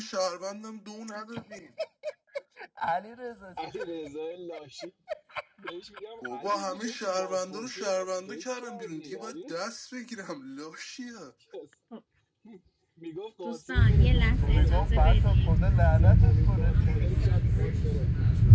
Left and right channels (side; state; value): both; identical; correlation 1.00